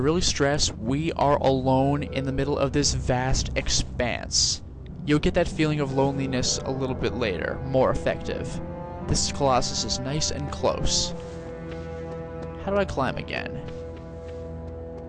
really stress we are alone in the middle of this vast expanse. You'll get that feeling of loneliness a little bit later, more effective. This Colossus is nice and close. How do I climb again?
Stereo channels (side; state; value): both; identical; correlation 1.00